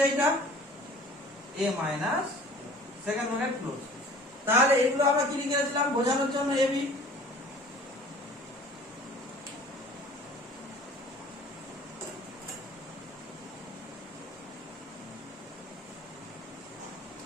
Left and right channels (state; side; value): normal; both; correlation 0.47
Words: এইটা a minus second bracket close. তাহলে এগুলো আমরা কি লিখেছিলাম বোঝানোর জন্য ab।